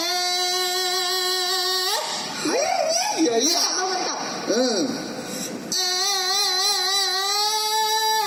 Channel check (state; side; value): identical; both; correlation 1.00